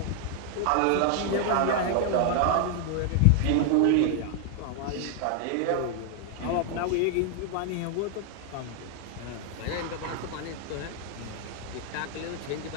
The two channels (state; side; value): different; both; correlation 0.00